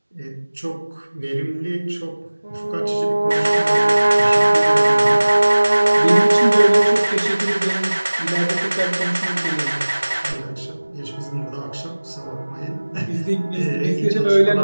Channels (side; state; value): both; inverted; correlation -1.00